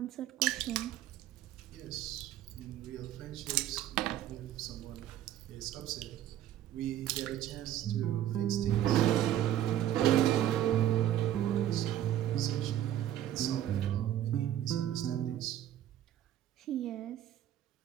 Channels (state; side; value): quieter; left; 11.9 dB